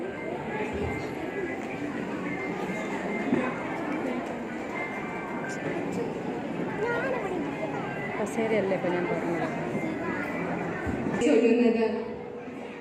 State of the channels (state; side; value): identical; both; correlation 1.00